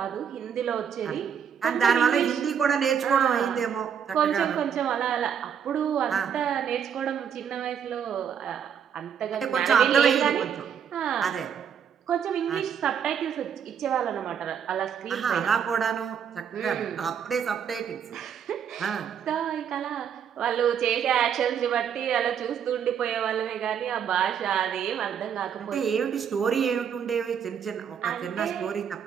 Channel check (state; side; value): quieter; left; 7.9 dB